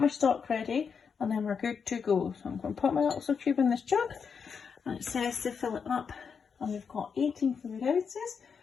stock ready and then we're good to go. So I'm going to put my little cube in this jug and it says to fill it up. And we've got 18 fluid ounces,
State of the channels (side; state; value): right; quieter; 6.2 dB